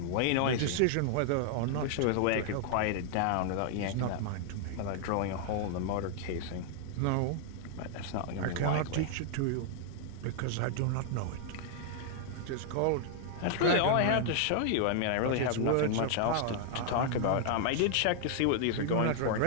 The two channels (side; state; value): both; different; correlation 0.00